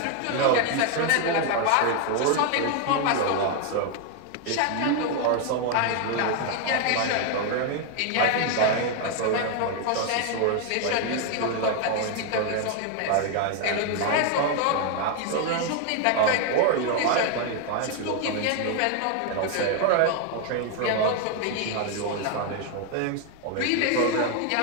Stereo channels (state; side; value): different; both; correlation 0.00